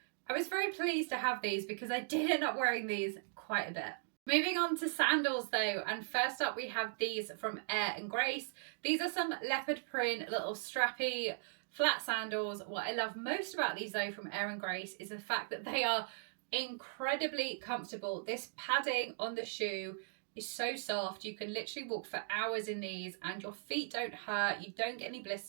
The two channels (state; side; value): silent; left; digital silence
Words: I was very pleased to have these because I did end up wearing these quite a bit. Moving on to sandals though, and first up we have these from Air and Grace. These are some leopard print, little strappy, flat sandals. What I love most about these though from Air and Grace is the fact that they are incredibly comfortable. This padding on the shoe is so soft. You can literally walk for hours in these and your feet don't hurt, you don't get any